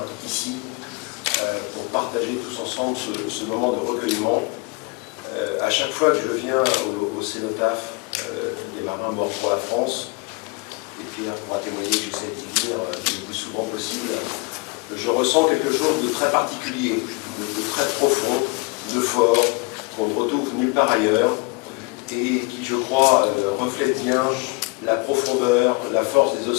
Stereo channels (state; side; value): quieter; right; 27.7 dB